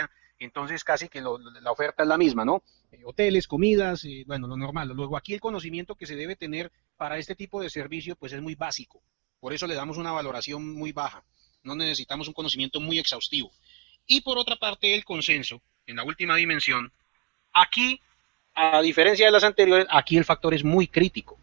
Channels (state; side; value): quieter; left; 29.3 dB